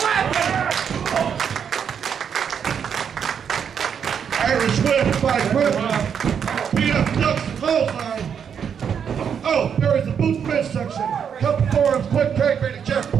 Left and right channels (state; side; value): quieter; left; 7.5 dB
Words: Irish whip by Kremlin. PF ducks the clothesline. Oh, there is the boot midsection. Couple forums, quick tag rating, Jeff